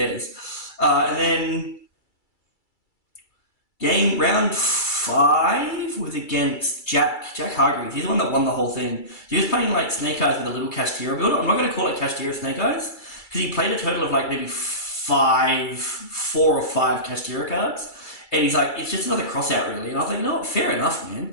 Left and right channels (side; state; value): right; late; 2.3 ms